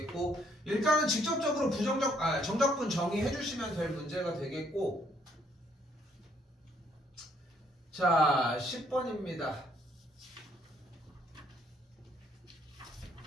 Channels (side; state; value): both; normal; correlation 0.67